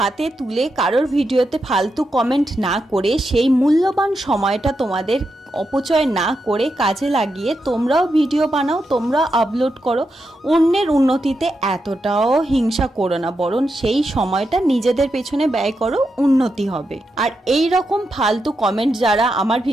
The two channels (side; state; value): both; normal; correlation 0.85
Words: তুলে কারোর ভিডিওতে ফালতু কমেন্ট না করে সেই মূল্যবান সময়টা তোমাদের অপচয় না করে কাজে লাগিয়ে তোমরাও ভিডিও বানাও, তোমরাও আপলোড করো। অন্যের উন্নতিতে এতটাও হিংসা করো না, বরং সেই সময়টা নিজেদের পেছনে ব্যয় করো, উন্নতি হবে। আর এই রকম ফালতু কমেন্ট যারা আমার